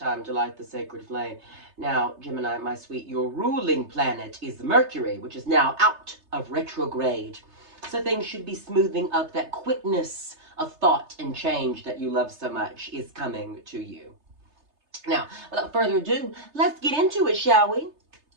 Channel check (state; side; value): late; left; 3.3 ms